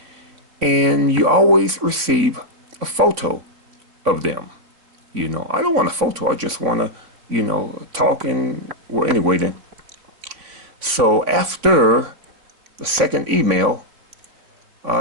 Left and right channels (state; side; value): late; left; 3.5 ms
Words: And you always receive a photo of them. I don't want a photo. I just want to, talk and, well, anyway then. So after the second email,